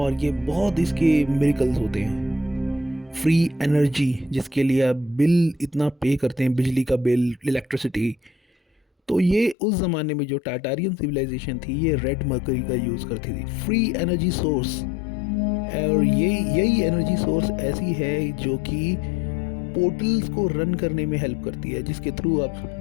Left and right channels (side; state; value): right; drops out; at 9.6 s